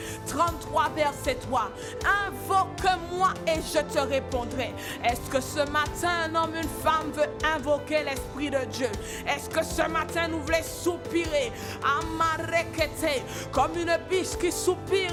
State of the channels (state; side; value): identical; both; correlation 1.00